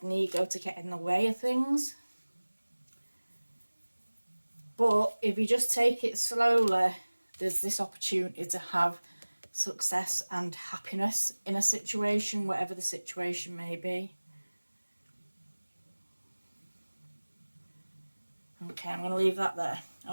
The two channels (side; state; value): both; inverted; correlation -1.00